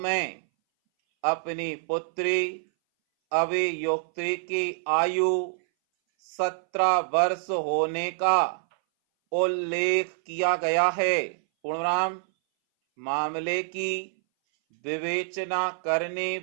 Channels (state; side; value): silent; left; 59 dB below the other